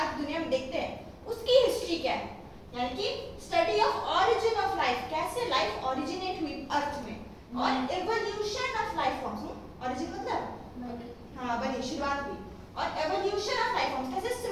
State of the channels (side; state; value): both; identical; correlation 1.00